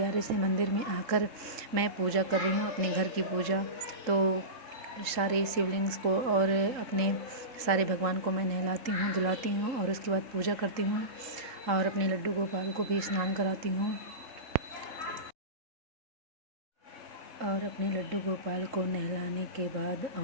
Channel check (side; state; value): left; late; 3.8 ms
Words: से मंदिर में आकर मैं पूजा कर रही हूँ, अपने घर की पूजा। तो सारे शिवलिंग्स को और अपने सारे भगवान को मैं नहलाती हूँ, धुलाती हूँ और उसके बाद पूजा करती हूँ और अपने लड्डू गोपाल को भी स्नान कराती हूँ। और अपने लड्डू गोपाल को नहलाने के बाद